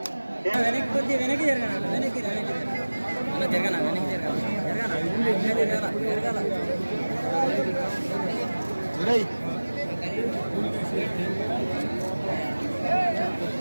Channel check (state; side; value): inverted; both; correlation -1.00